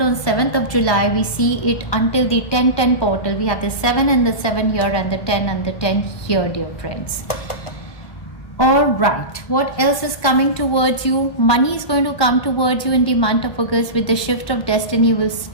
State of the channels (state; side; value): late; right; 1.2 ms